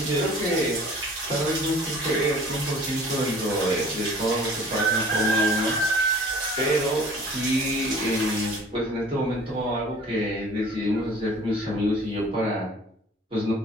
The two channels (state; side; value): normal; both; correlation 0.48